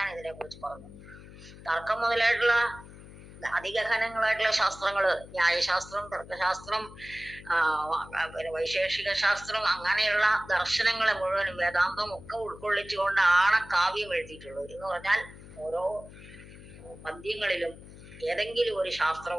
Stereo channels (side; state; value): left; noise; hum, 17 dB below the sound